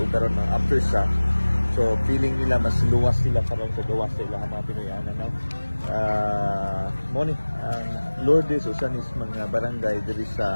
karon ng aftershock. So feeling nila mas luwas sila karon sa gawas sa ilang mga Pinoyanan, no? Ang Lourdes usan is mga barangay diri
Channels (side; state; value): both; inverted; correlation -1.00